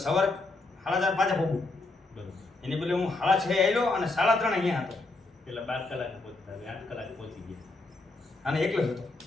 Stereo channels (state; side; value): quieter; right; 3.2 dB